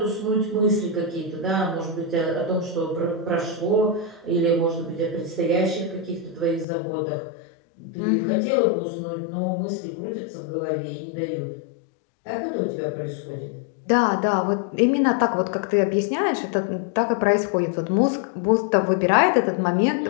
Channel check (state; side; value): drops out; right; at 6.7 s